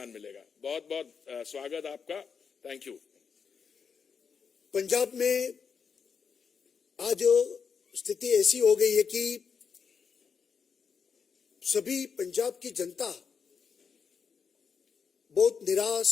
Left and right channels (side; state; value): right; quieter; 6.2 dB